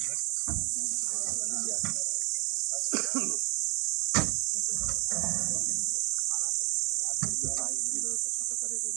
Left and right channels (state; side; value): quieter; left; 31.8 dB